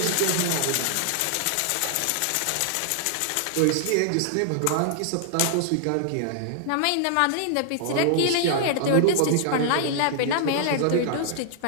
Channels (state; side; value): different; both; correlation -0.01